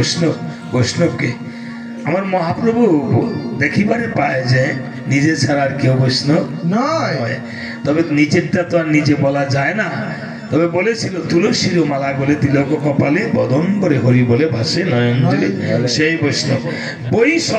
বৈষ্ণবকে। আমার মহাপ্রভু দেখিবারে পায় যে নিজে ছাড়া আর কেউ বৈষ্ণব নয়। তবে নিজেরটা তো আর নিজে বলা যায় না। তবে বলেছিল তুলসীর মালা বলে তিলক কপালে বদম্বরে হরি বলে ভাসে নয়নজলি, সেই বৈষ্ণব। বই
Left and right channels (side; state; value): both; identical; correlation 1.00